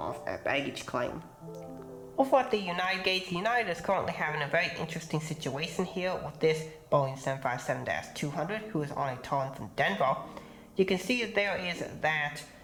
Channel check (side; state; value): both; identical; correlation 1.00